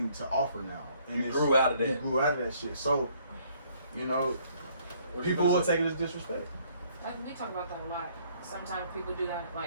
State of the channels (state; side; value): inverted; both; correlation -0.64